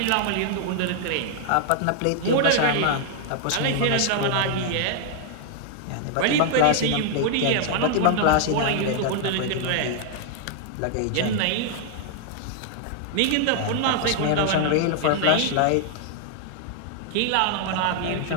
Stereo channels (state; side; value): different; both; correlation 0.00